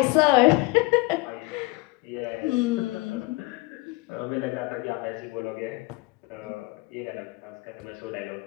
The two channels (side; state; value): right; quieter; 22.2 dB